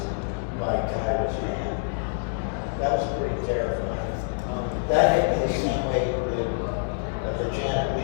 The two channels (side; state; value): right; silent; digital silence